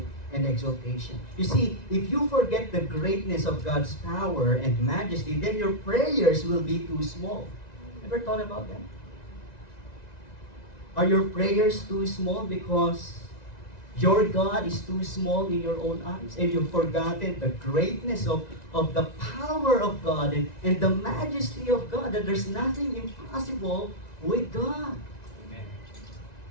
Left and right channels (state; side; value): late; right; 1.9 ms